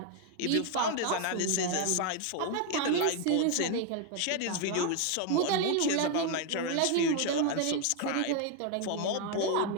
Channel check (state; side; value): different; both; correlation 0.01